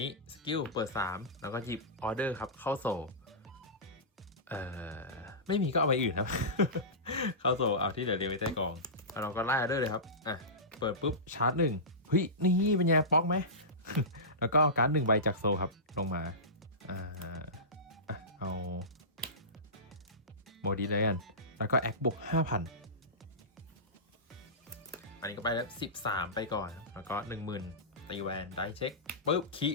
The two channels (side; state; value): both; normal; correlation -0.19